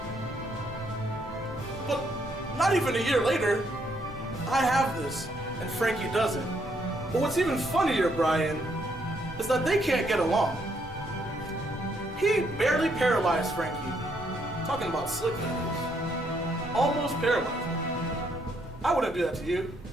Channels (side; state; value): both; normal; correlation 0.72